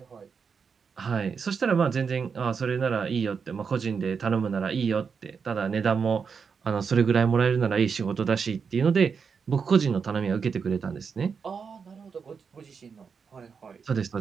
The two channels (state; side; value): quieter; left; 5.9 dB